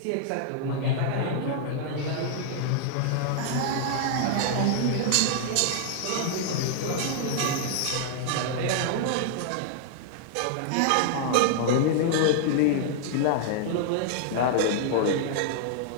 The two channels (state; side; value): different; both; correlation -0.01